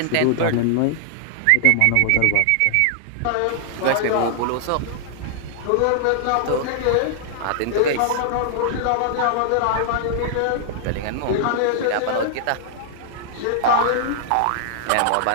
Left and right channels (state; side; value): different; both; correlation -0.01